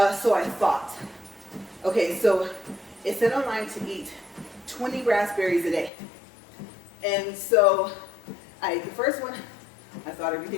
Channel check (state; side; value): drops out; right; at 5.9 s